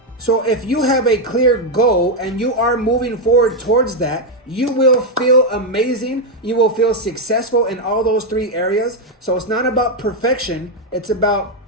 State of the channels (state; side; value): normal; both; correlation 0.03